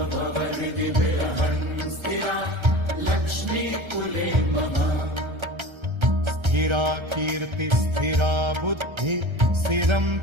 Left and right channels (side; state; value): left; late; 1.3 ms